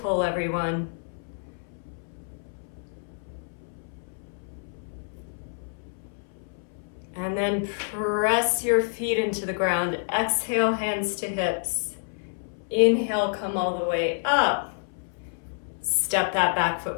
everyone. And then press your feet into the ground. Exhale, hands to hips. Inhale, come all the way up. Step that back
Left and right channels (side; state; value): right; silent; 60 dB below the other